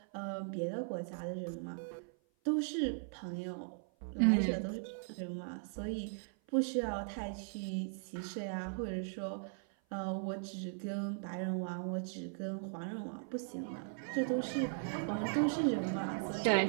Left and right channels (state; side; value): silent; left; 52 dB below the other